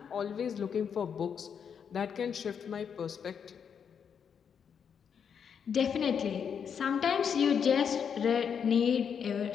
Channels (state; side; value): quieter; right; 7.3 dB